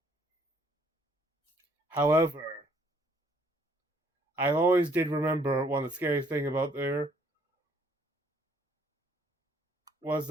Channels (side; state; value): both; normal; correlation 0.64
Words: However, I always did remember one of the scariest thing about there was